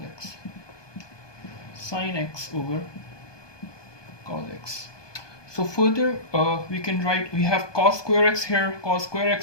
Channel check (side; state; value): right; late; 1.2 ms